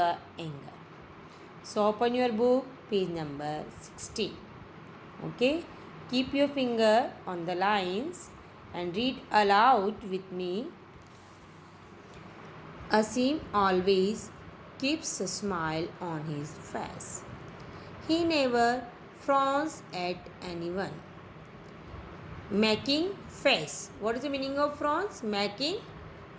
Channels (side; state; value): both; identical; correlation 1.00